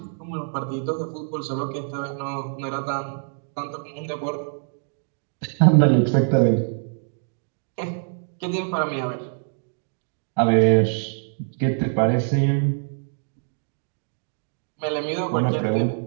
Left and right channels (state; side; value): silent; left; digital silence